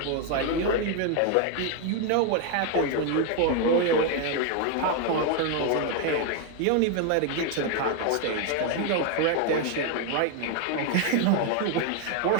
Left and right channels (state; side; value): different; both; correlation 0.01